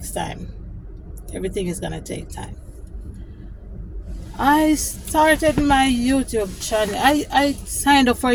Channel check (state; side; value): identical; both; correlation 1.00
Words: time. Everything is gonna take time. I started my YouTube channel. I signed up for a